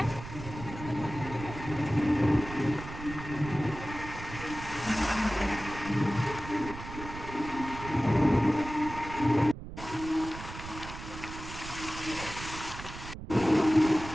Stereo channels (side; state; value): right; noise; rumble, 11 dB below the sound